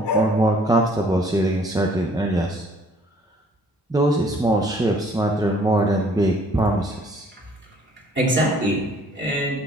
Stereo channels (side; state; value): both; normal; correlation 0.58